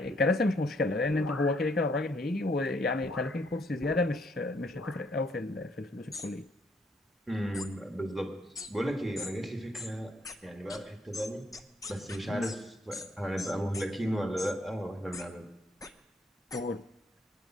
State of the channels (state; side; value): normal; both; correlation 0.69